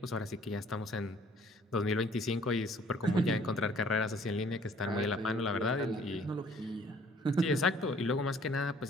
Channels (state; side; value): normal; both; correlation 0.58